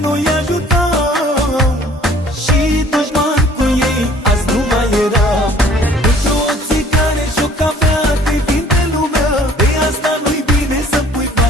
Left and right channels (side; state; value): both; normal; correlation 0.54